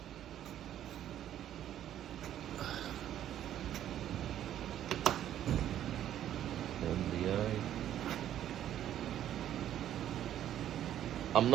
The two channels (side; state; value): left; quieter; 11.2 dB